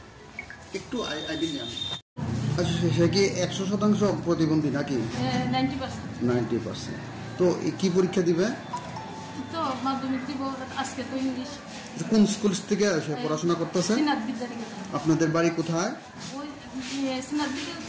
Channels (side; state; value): both; identical; correlation 1.00